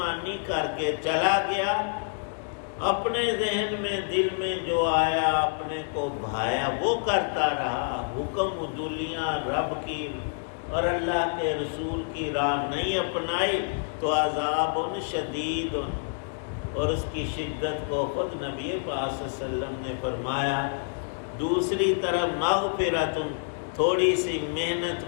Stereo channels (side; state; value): right; silent; digital silence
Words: کر کے چلا گیا، اپنے ذہن میں دل میں جو آیا اپنے کو بھایا وہ کرتا رہا، حکم عدولیاں رب کی اور اللہ کے رسول کی راہ نہیں اپنائی تو عذاب شدید، اور اس کی شدت کو خود نبی پاک صلی اللہ علیہ وسلم نے فرمایا۔ دوسری طرف مغفرت، تھوڑی سی محنت